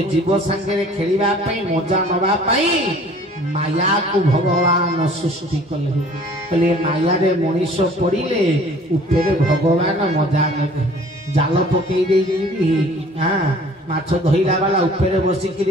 जीव संगे खेलिबा पई मजा नवा पई माया को भगवान सृष्टि कले कहले माया रे मनीष पड़िले उपरे भगवान मजा नेबे जाल पकई देई हां माछ धइला वाला उपरे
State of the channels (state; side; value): normal; both; correlation 0.51